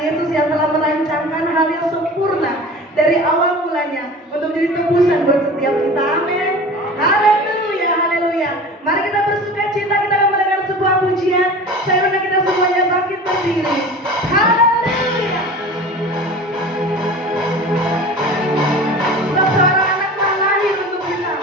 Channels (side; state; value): both; normal; correlation 0.37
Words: yang telah merancangkan hal yang sempurna dari awal mulanya untuk menjadi tebusan buat setiap kita. Amin. Haleluya, haleluya. Mari kita bersuka cita, kita akan mendengar sebuah pujian. Saya undang kita semuanya bangkit berdiri. Haleluya. Sebab seorang anak telah lahir untuk kita,